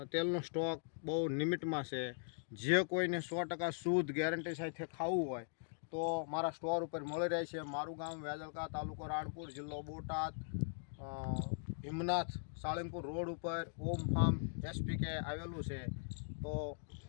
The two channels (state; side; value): silent; right; digital silence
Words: તેલનો સ્ટોક બહુ લિમિટમાં છે. જે કોઈને 100% શુદ્ધ ગેરંટી સાથે ખાવું હોય તો મારા સ્ટોર ઉપર મળી રહે છે. મારું ગામ વેજલકા, તાલુકો રાણપુર, જિલ્લો બોટાદ, હિમનાથ સાળંગપુર રોડ ઉપર ઓમ ફાર્મ એસપીકે આવેલું છે. તો